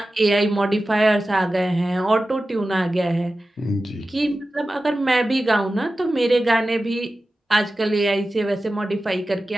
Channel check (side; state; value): both; normal; correlation 0.94